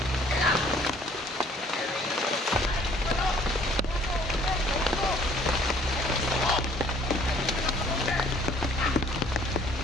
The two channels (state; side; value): normal; both; correlation 0.57